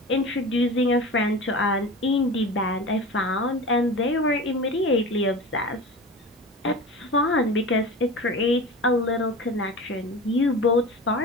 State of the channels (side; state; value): both; normal; correlation 0.33